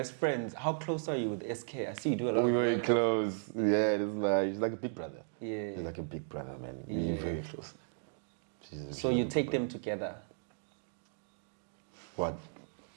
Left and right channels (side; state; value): left; silent; digital silence